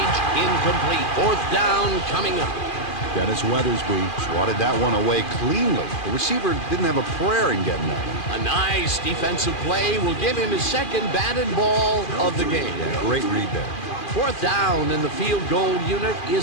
Incomplete. 4th down coming up. Dennis Weathersby swatted that one away cleanly. The receiver didn't have a prayer in getting that one. A nice defensive play will give him his 2nd batted ball of the game. Yeah, great read there. 4th down, and the field goal unit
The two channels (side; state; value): right; late; 2.4 ms